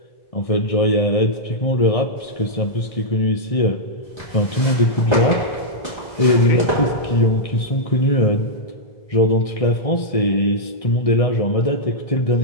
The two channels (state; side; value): late; right; 1.6 ms